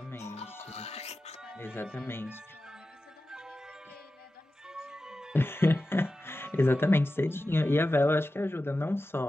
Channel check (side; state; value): both; normal; correlation 0.93